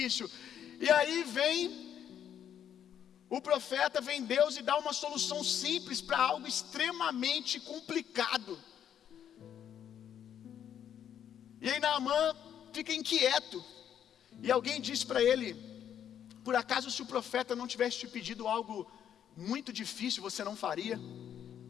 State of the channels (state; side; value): quieter; right; 9.4 dB